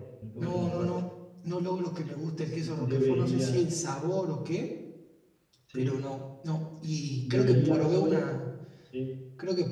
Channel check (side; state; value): both; identical; correlation 1.00